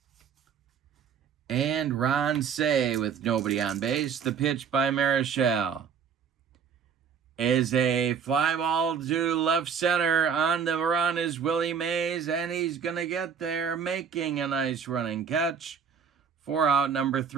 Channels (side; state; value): left; quieter; 6.9 dB